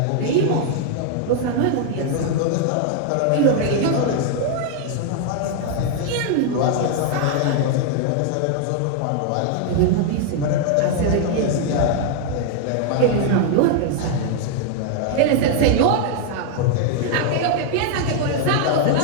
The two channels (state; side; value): different; both; correlation 0.00